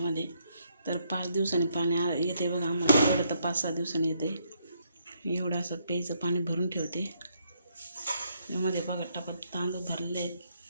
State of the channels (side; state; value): both; inverted; correlation -0.73